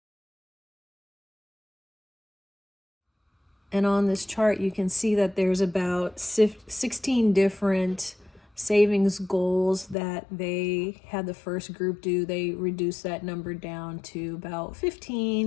And on this chart, you can see that there's about 16 different savings goals that they had the first group do. They reduced that number down to about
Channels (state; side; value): drops out; right; at 10.0 s